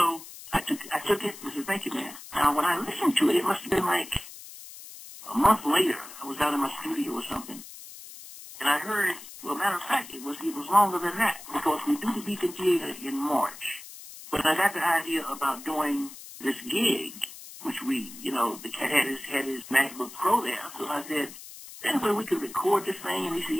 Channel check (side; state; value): left; noise; hiss, 15 dB below the sound